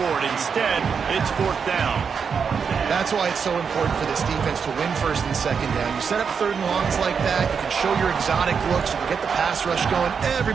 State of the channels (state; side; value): quieter; left; 6.3 dB